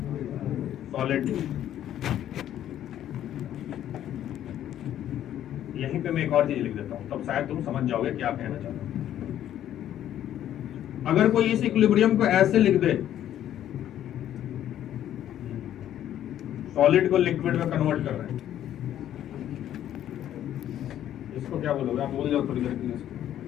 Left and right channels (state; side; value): quieter; right; 11.4 dB